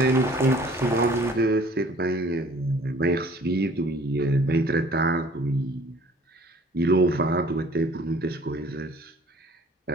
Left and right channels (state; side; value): normal; both; correlation 0.53